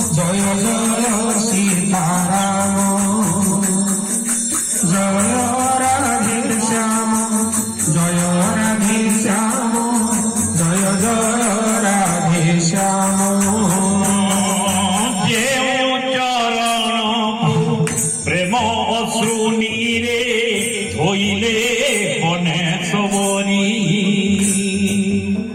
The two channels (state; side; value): identical; both; correlation 1.00